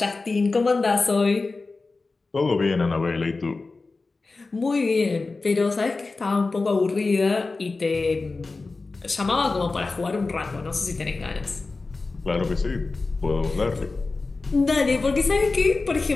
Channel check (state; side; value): quieter; right; 3.7 dB